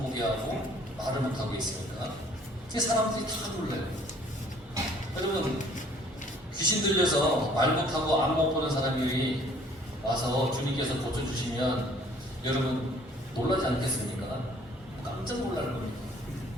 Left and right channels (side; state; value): both; normal; correlation 0.57